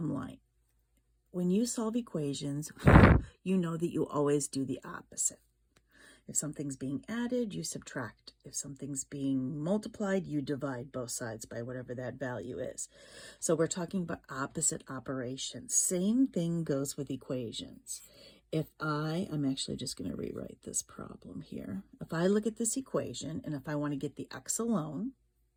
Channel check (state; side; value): identical; both; correlation 1.00